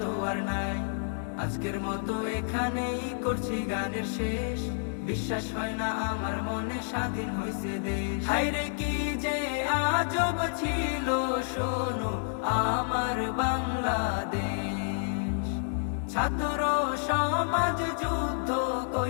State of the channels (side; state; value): right; silent; digital silence